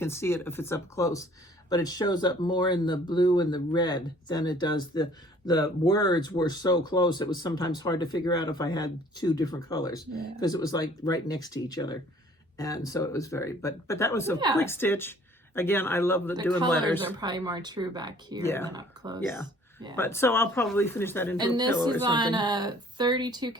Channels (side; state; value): both; normal; correlation 0.55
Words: see it if it's up close, but it shows up more in the blue and the red than it does the the words were so close, it was sometimes hard to figure out if I had two different colors because it was like right next to each other. And so it was very, but that was a quick stitch. Again, I love the doing letters. The colors are probably more true back here than up close. Yeah. But so I'll probably finish that into a pillow or something. And this is on a 32